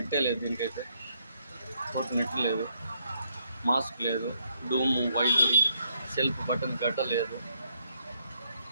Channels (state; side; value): inverted; both; correlation -0.73